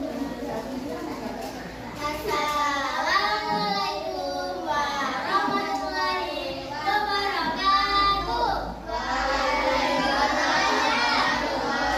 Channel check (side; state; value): both; identical; correlation 1.00